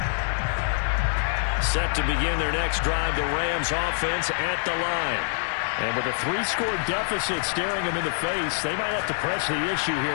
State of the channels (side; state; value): right; silent; digital silence